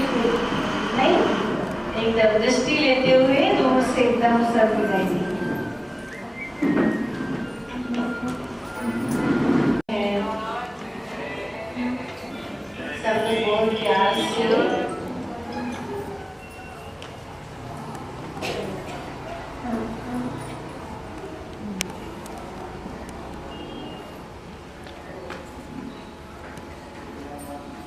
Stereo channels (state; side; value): identical; both; correlation 1.00